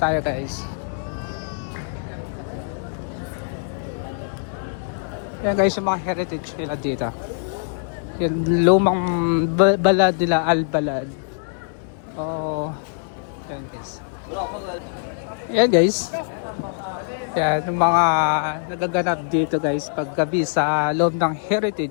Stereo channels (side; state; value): right; silent; digital silence